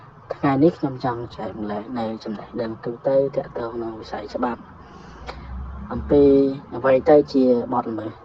ថ្ងៃនេះខ្ញុំចង់ចែកម្លែកនៅចំណេះដឹងទូទៅទាក់ទងនឹងវិស័យច្បាប់អំពីអ្វីទៅជាបទល្មើស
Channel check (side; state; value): both; identical; correlation 1.00